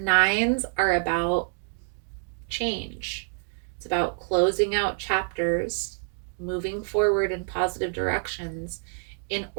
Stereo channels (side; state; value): left; silent; 60 dB below the other